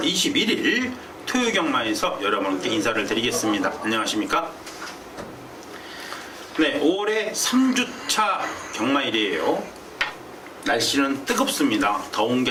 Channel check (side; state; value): both; identical; correlation 1.00